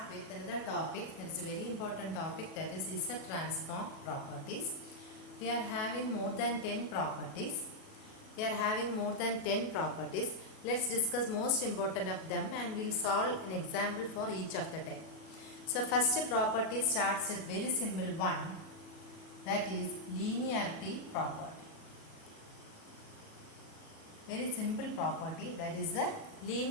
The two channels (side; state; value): right; late; 37 ms